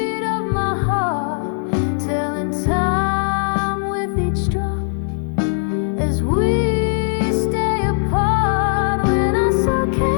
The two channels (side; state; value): right; silent; digital silence